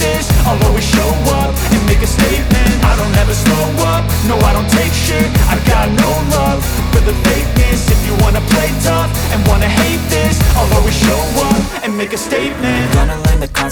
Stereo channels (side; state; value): both; identical; correlation 1.00